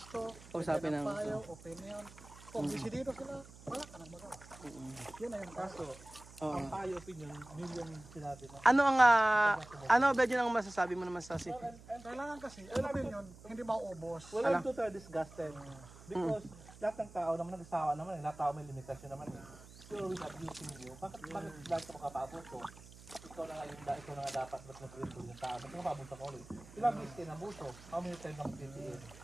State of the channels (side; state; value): right; noise; hum, 19 dB below the sound